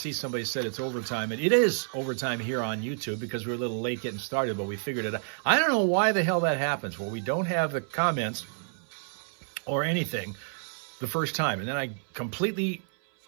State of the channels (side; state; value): left; silent; 58 dB below the other